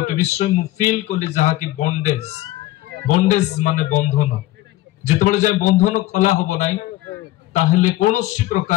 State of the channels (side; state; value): right; quieter; 16.6 dB